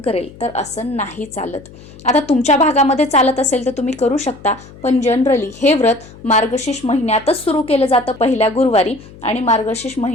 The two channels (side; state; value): left; noise; hum, 20 dB below the sound